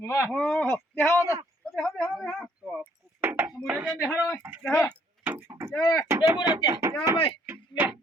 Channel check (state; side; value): normal; both; correlation 0.65